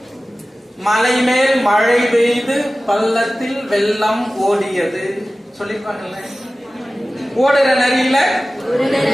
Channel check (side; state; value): both; normal; correlation 0.96